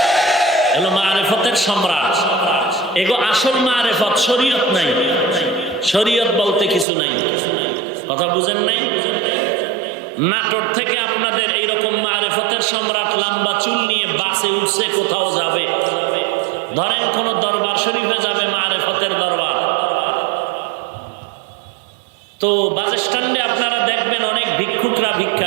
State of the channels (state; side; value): drops out; left; at 6.9 s